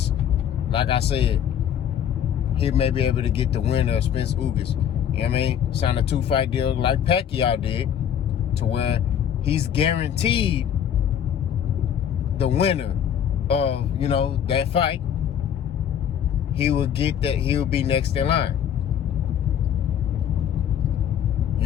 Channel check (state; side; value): quieter; right; 9.2 dB